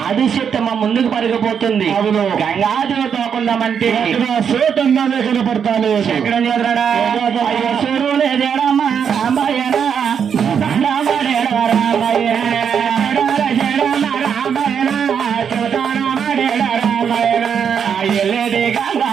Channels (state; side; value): quieter; left; 7.4 dB